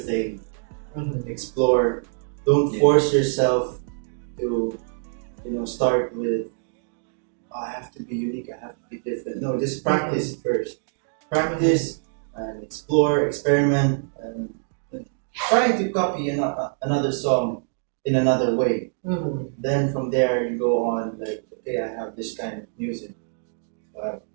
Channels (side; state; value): left; silent; digital silence